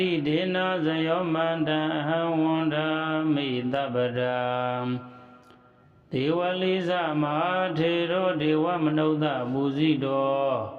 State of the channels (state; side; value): identical; both; correlation 1.00